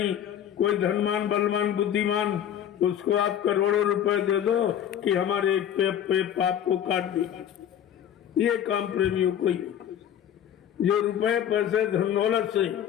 कोई धनवान बलवान बुद्धिमान, उसको आप करोड़ों रुपए दे दो कि हमारे एक पे पाप को काट दीजिए। ये काम प्रेमियों को ही, जो रुपए पैसे धन दौलत से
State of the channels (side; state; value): right; quieter; 10.0 dB